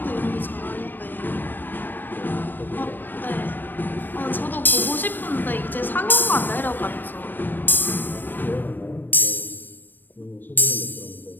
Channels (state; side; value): late; right; 0.092 ms